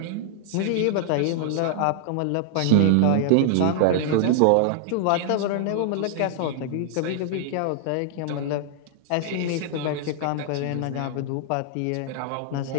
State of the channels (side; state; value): both; different; correlation -0.01